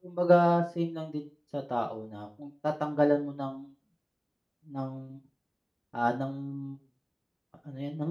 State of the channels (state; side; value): identical; both; correlation 1.00